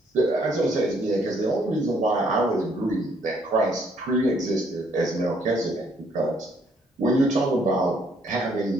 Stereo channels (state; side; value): normal; both; correlation 0.67